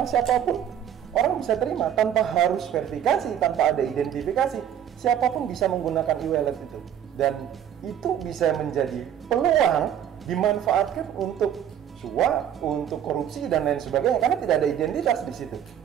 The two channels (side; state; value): left; quieter; 9.7 dB